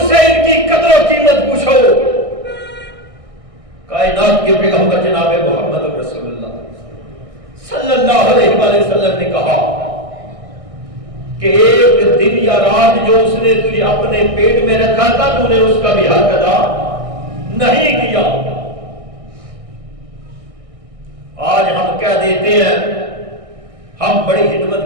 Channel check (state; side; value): late; left; 1.6 ms